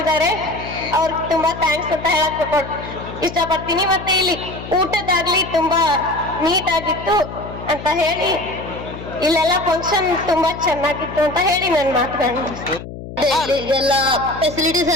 ಅವ್ರಿಗೆ ತುಂಬಾ ಥ್ಯಾಂಕ್ಸ್ ಅಂತ ಹೇಳಕ್ ಇಷ್ಟಪಡ್ತೀನಿ. ಮತ್ತೆ ಇಲ್ಲಿ ಊಟದಾಗ್ಲಿ ತುಂಬಾ ನೀಟ್ ಆಗಿತ್ತು ಅಂತ ಹೇಳಿ ಇಲ್ಲೆಲ್ಲ ಫಂಕ್ಷನ್ ತುಂಬಾ ಚೆನ್ನಾಗಿತ್ತು ಅಂತ ಹೇಳಿ ನನ್ನ ಮಾತುಗಳನ್ನ ಎಲ್ಲ ಫೆಸಿಲಿಟೀಸ್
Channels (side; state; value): left; noise; hum, 12 dB below the sound